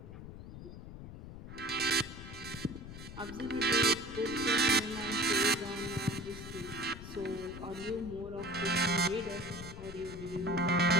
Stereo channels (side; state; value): left; noise; rumble, 11 dB below the sound